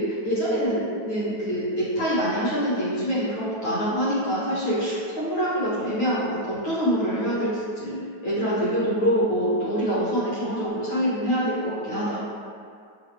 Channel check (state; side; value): late; right; 9.1 ms